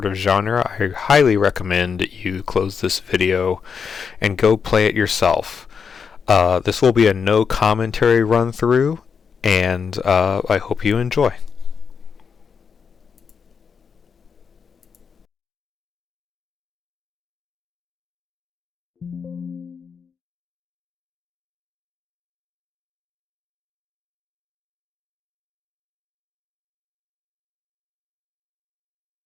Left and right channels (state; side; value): quieter; right; 6.2 dB